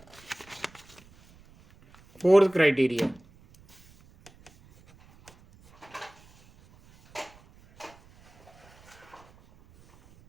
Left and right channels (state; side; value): noise; right; rumble, 27 dB below the sound